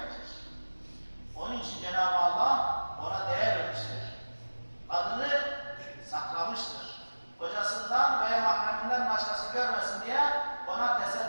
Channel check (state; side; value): inverted; both; correlation -1.00